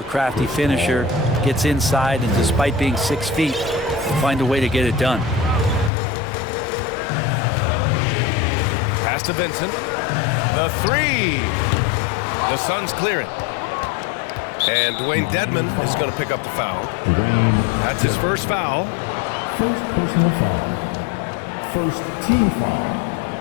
crafty finisher, gets inside, and despite being 6 feet, find a way to get it done. Pass to Vincent. The three. The Suns clear it. And Dwayne Dedman is going to pick up the foul. That's his first foul. First personal foul. First team foul.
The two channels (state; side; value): drops out; right; at 5.9 s